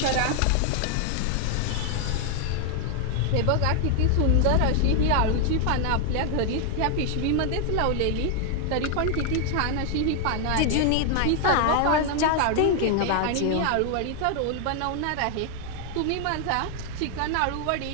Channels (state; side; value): different; both; correlation 0.00